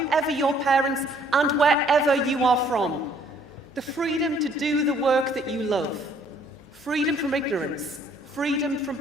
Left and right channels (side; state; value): both; normal; correlation 0.62